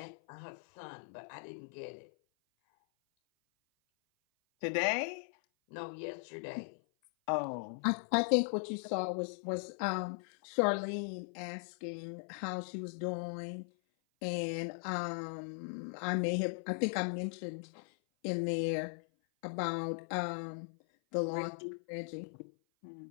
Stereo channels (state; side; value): silent; right; 52 dB below the other